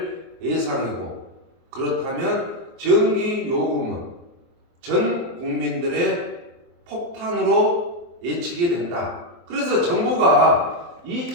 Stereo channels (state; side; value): late; left; 23 ms